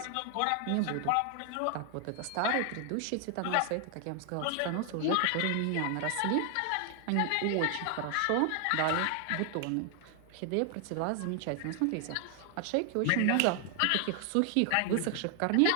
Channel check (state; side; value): different; both; correlation 0.00